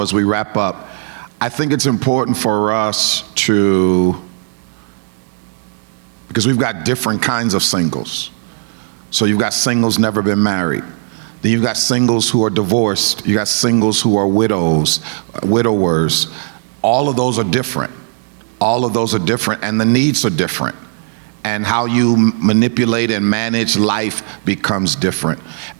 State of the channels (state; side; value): silent; left; 61 dB below the other